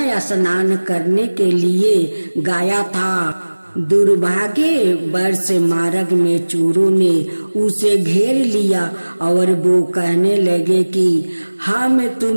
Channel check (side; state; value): both; inverted; correlation -1.00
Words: स्नान करने के लिए गया था। दुर्भाग्य वर्ष मार्ग में चोरों ने उसे घेर लिया और वो कहने लगे कि हम